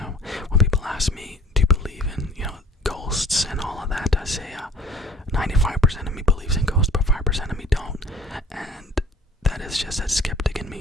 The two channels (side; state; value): both; normal; correlation 0.51